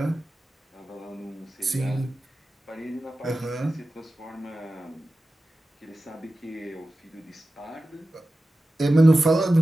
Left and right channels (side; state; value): both; normal; correlation 0.94